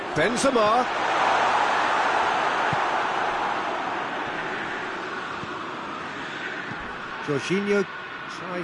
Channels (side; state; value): both; identical; correlation 1.00